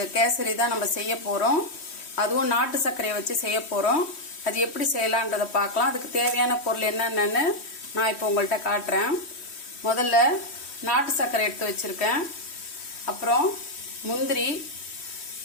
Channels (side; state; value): right; late; 3.1 ms